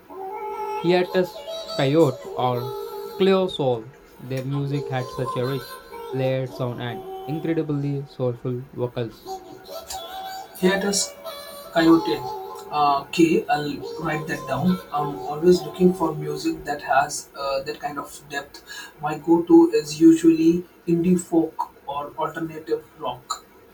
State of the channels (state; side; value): identical; both; correlation 1.00